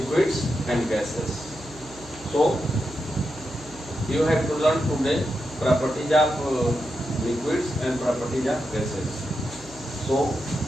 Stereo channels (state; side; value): noise; right; hum, 19 dB below the sound